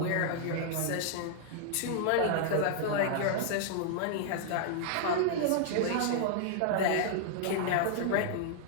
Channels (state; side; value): different; both; correlation -0.01